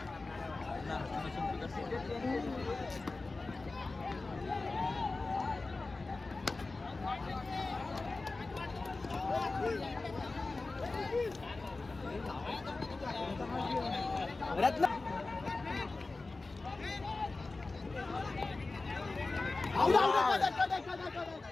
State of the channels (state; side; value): quieter; right; 3.5 dB